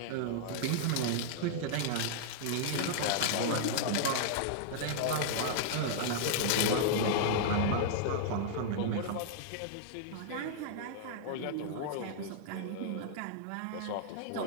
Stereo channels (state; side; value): different; both; correlation -0.01